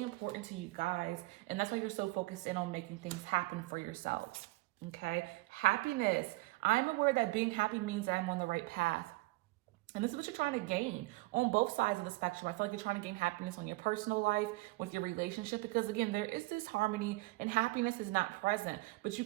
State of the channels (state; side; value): quieter; left; 22.0 dB